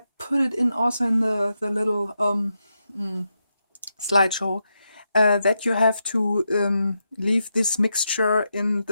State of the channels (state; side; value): inverted; both; correlation -0.86